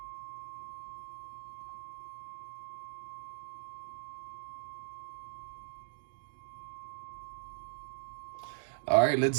All right, let's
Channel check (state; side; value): silent; left; digital silence